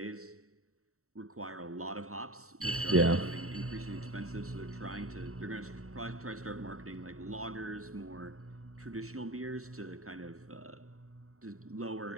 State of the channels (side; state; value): left; late; 0.64 ms